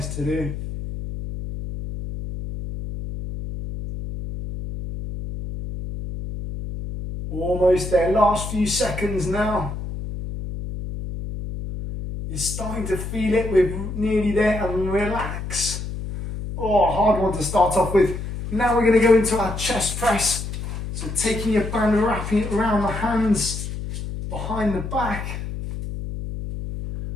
to do. Almost there, last few seconds now. You're starting to feel it, we're nearly there, and relax. Oh, hard one to start off with. Now we're going to go into our chest press. So taking your band and wrapping it around the hands, behind the back,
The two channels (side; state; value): left; noise; hum, 7 dB below the sound